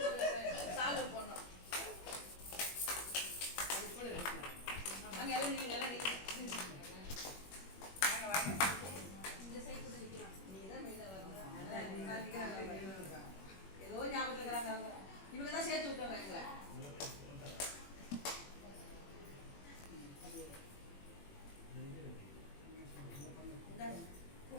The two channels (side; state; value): right; late; 21 ms